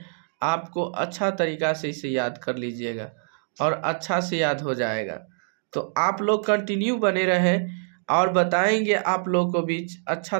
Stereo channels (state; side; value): silent; left; digital silence